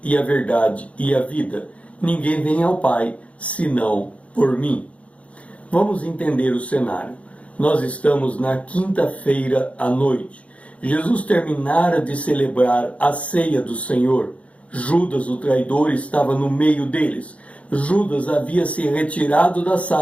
e a verdade e a vida. Ninguém vem ao Pai senão por mim. Vamos entender o cenário. Nós estamos na quinta-feira à noite. Jesus terminara de celebrar a ceia do Senhor. Judas, o traidor, estava no meio deles. Judas havia se retirado da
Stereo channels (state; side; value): late; right; 0.064 ms